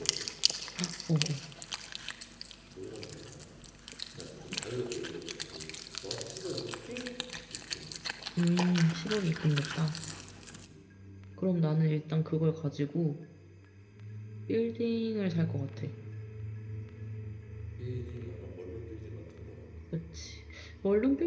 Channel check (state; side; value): identical; both; correlation 1.00